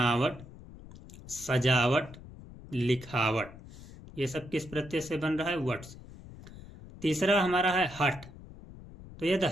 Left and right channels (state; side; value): noise; left; rumble, 17 dB below the sound